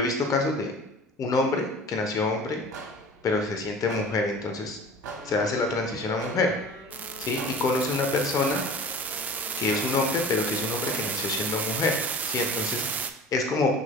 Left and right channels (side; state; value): both; normal; correlation 0.40